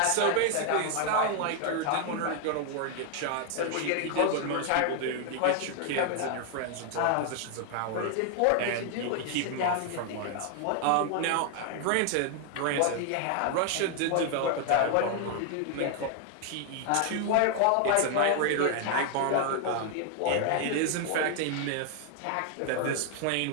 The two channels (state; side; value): different; both; correlation 0.00